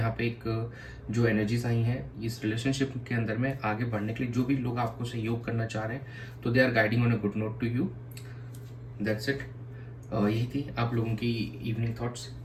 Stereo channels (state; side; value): identical; both; correlation 1.00